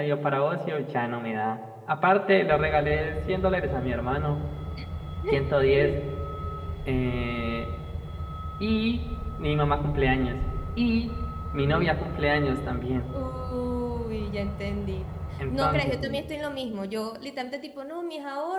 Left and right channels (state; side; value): identical; both; correlation 1.00